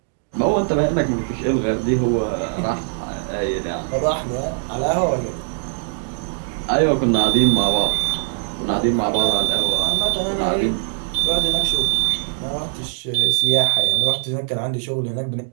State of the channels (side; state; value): left; silent; digital silence